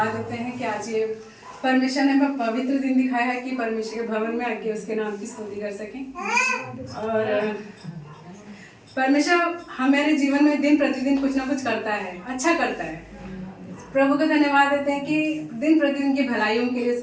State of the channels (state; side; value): identical; both; correlation 1.00